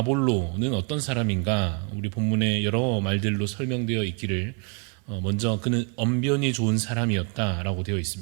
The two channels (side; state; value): left; quieter; 35.7 dB